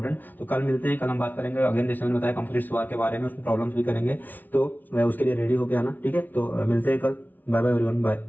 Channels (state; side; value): late; right; 0.083 ms